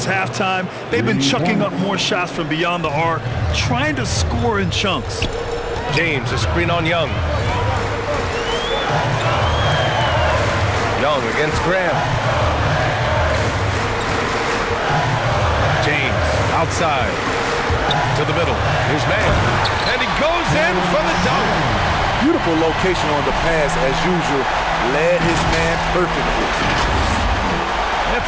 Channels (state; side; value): identical; both; correlation 1.00